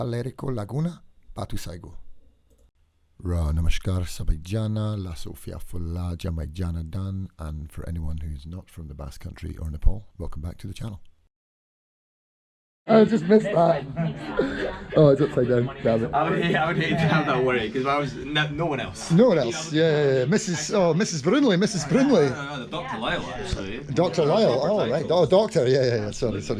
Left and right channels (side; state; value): both; identical; correlation 1.00